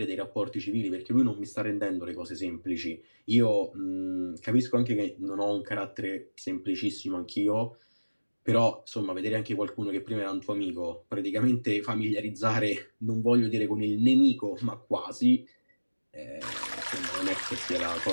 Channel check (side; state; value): both; inverted; correlation -1.00